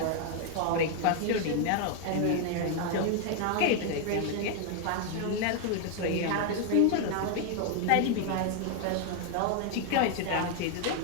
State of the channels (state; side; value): different; both; correlation 0.00